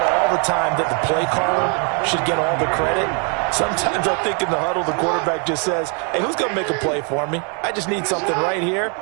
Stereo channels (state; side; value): quieter; left; 37.3 dB